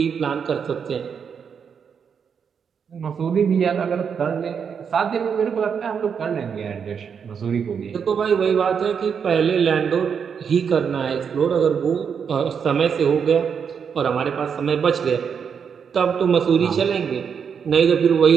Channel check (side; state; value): left; quieter; 6.9 dB